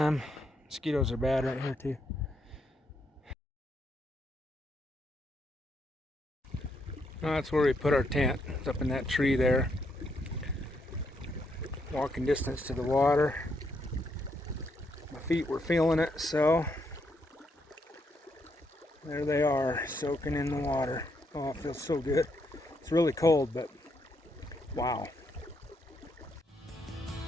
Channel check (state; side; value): normal; both; correlation 0.77